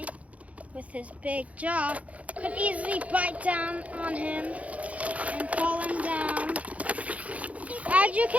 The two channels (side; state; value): left; late; 0.067 ms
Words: with his big jaw, could easily bite down on him and pull him down. As you